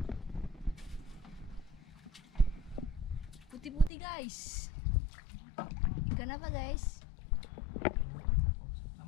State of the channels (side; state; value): right; drops out; at 3.9 s